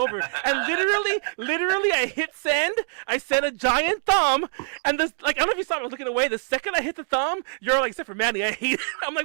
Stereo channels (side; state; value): left; silent; digital silence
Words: And literally, I hit send. I sent a giant thumb, and this, like, I don't know if you saw, I was looking away. The second I hit the thumb, you're like, except for Manny, I hate it. I'm